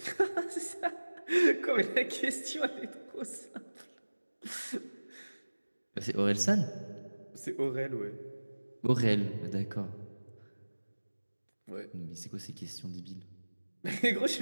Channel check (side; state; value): both; inverted; correlation -1.00